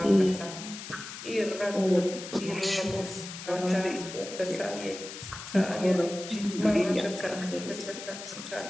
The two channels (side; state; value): left; noise; hiss, 11 dB below the sound